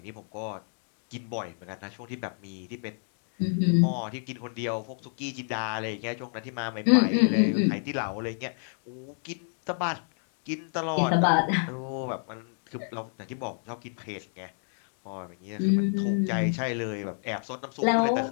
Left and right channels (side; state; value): right; silent; 58 dB below the other